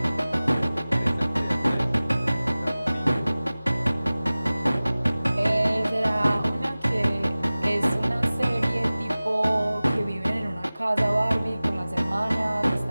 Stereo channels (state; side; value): inverted; both; correlation -0.98